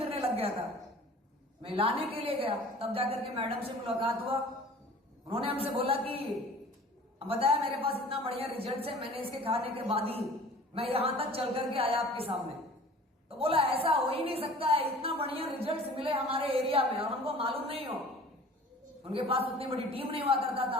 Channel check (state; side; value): normal; both; correlation 0.45